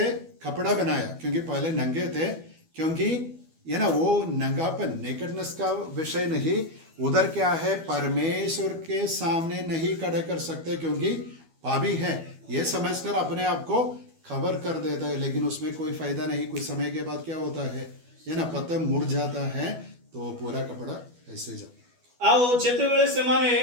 कपड़ा बनाया, क्योंकि पहले नंगे थे, क्योंकि ये ना वो नंगापन, नेकेडनेस का विषय नहीं, उधर क्या है? परमेश्वर के सामने नहीं खड़े कर सकते क्योंकि पापी है, ये समझकर अपने आप को खबर कर देता है, लेकिन उसमें कोई फायदा नहीं। कुछ समय के बाद क्या होता है? ये ना पत्ता मुड़ जाता है, तो पूरा कपड़ा ऐसे जाता। आओ जेतेबेले से माने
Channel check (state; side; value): late; left; 12 ms